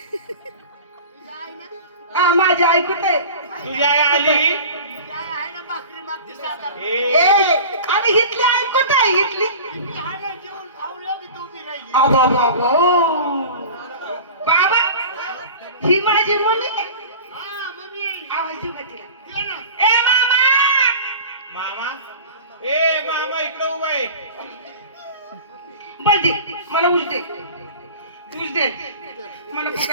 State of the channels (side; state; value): both; inverted; correlation -0.37